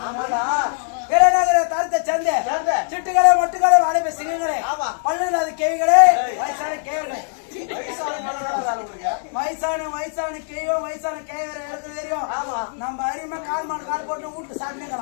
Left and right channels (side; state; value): right; silent; digital silence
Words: தருத்த சந்தை சிட்டுகளே மொட்டுகளே வாழைப்பை சிங்கங்களே பல்லுல அது கேவிகளே வயசான கேவர்களே வயசான கேவோ வயசான கேவரை எடுத்து தெரியும் நம்ம அரிமா கால் போட்டு வீட்டு